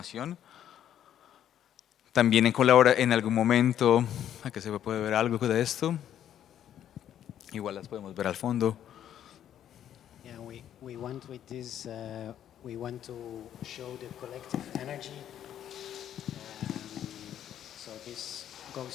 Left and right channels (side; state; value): right; quieter; 10.5 dB